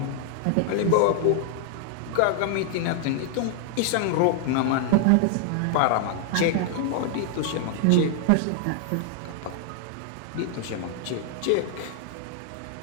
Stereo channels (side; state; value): both; different; correlation 0.00